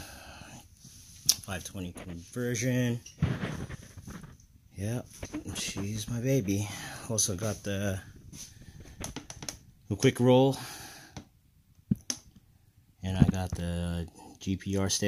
520 conversion. Yep, she's my baby. Also got the quick roll, and I got the GPR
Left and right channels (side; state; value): both; identical; correlation 1.00